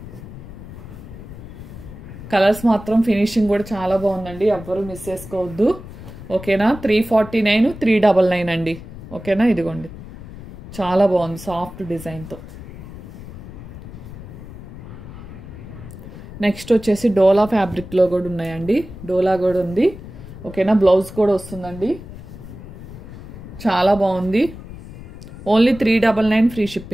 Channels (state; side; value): noise; left; rumble, 14 dB below the sound